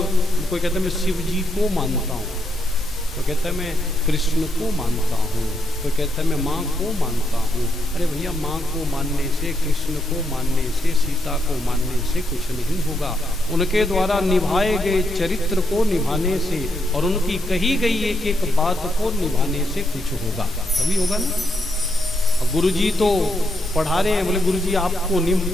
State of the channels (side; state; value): both; normal; correlation 0.79